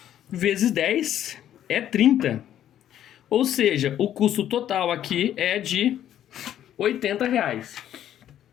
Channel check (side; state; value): right; quieter; 11.1 dB